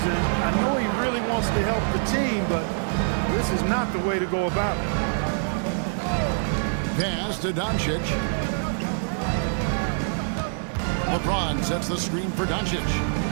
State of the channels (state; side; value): silent; left; digital silence